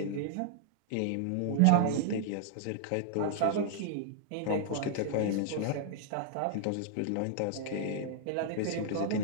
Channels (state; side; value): different; both; correlation -0.01